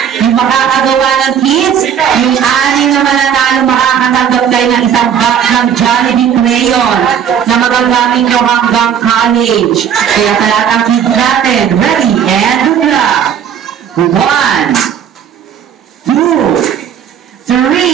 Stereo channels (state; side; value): quieter; left; 8.6 dB